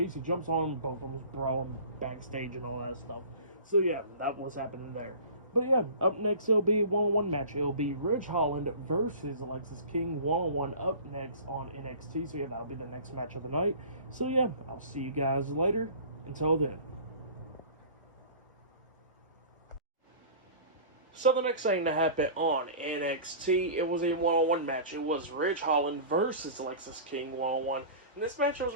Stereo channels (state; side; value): inverted; both; correlation -0.40